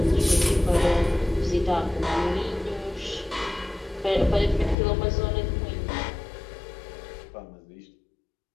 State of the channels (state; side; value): drops out; right; at 4.8 s